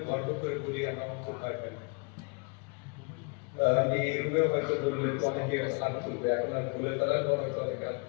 গর্ব করে বলি আমরা অঙ্ক ভয় পাই। আমি এই রুমেও হয়তো বললে তো অনেকে হাত তুলবে, এখন আর বলে ফেলার পর হয়তো অনেকে হাত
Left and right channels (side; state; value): right; quieter; 32.3 dB